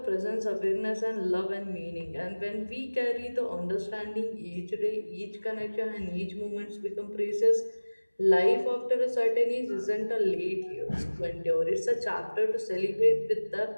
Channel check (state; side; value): inverted; both; correlation -1.00